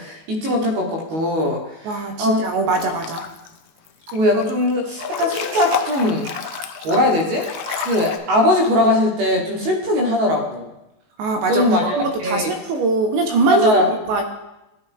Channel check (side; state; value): left; late; 18 ms